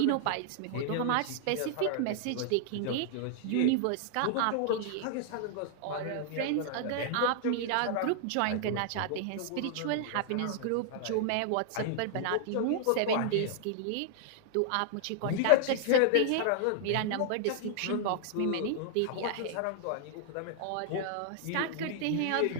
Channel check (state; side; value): different; both; correlation -0.01